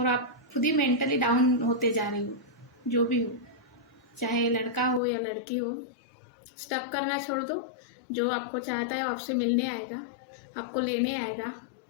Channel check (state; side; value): drops out; right; at 5.0 s